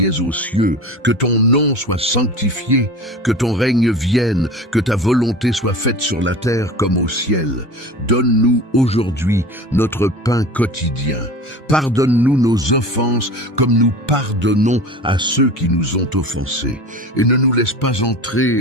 es aux cieux, que ton nom soit sanctifié, que ton règne vienne, que ta volonté soit faite sur la terre comme au ciel. Donne-nous aujourd'hui notre pain quotidien. Pardonne-nous nos offenses comme nous pardonnons à ceux qui nous ont offensés. Et ne nous laisse pas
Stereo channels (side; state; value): both; normal; correlation 0.36